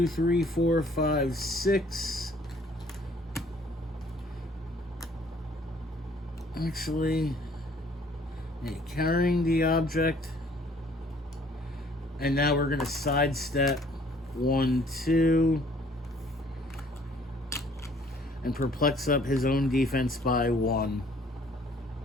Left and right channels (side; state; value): both; normal; correlation 0.59